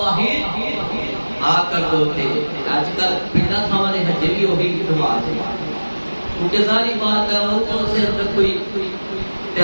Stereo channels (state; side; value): inverted; both; correlation -1.00